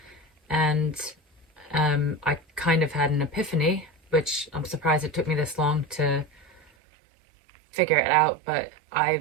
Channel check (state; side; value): drops out; left; at 6.7 s